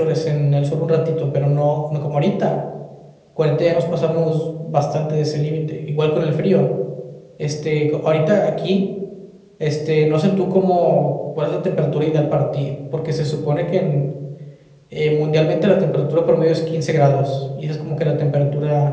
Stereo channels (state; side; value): identical; both; correlation 1.00